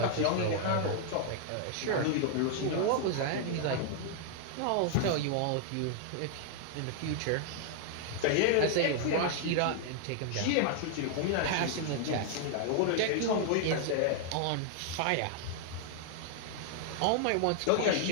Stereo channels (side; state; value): both; different; correlation 0.00